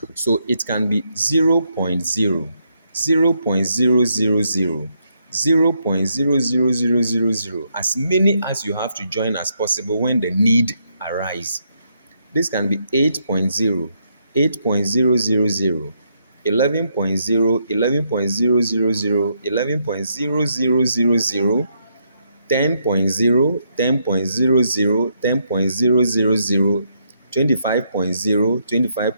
So it can be 0.0, 0.0000, 0.00000, as many as you have to join as possible when the need arise. This can be 8.0, 8.000, 11.0, 11.000, 11.0000, 10.0, 10.00, 10.000, 25.0,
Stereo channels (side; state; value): both; inverted; correlation -0.77